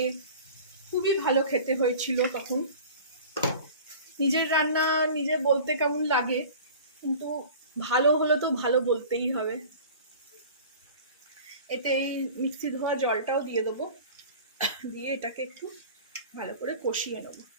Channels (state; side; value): inverted; both; correlation -0.41